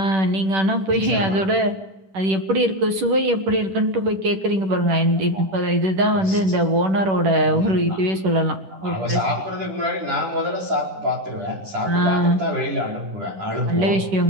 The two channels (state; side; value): late; left; 10 ms